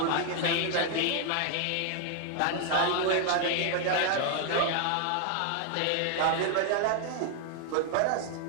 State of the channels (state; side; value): different; both; correlation 0.00